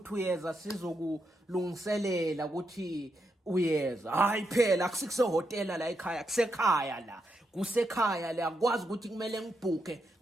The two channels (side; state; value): both; normal; correlation 0.83